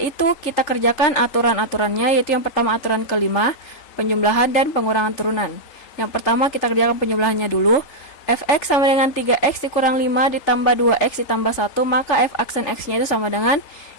itu kita kerjakan aturan-aturannya, yaitu yang pertama aturan kelima, penjumlahan dan pengurangan turunan. Yang pertama kita kerjakan penjumlahannya dulu. Fx sama dengan 3x dikurang 5 ditambah 2x ditambah 1, maka f aksen x-nya itu sama dengan,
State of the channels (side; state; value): right; late; 3.4 ms